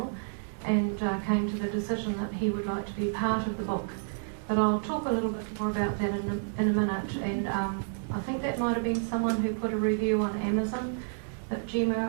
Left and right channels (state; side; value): silent; left; 58 dB below the other